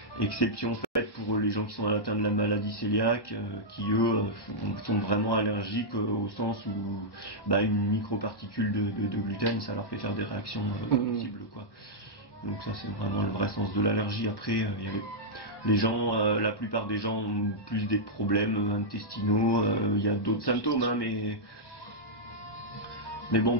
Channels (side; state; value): right; late; 1.1 ms